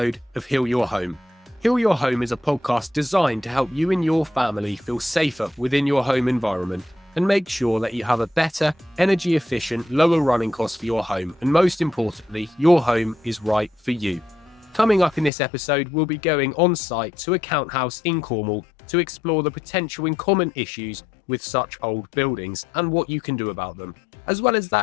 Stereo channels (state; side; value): drops out; right; at 15.3 s